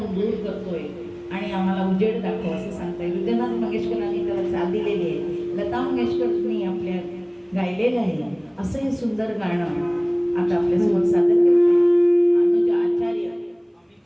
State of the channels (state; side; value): identical; both; correlation 1.00